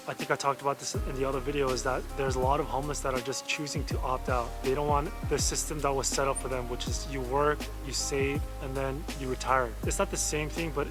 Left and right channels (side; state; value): both; identical; correlation 1.00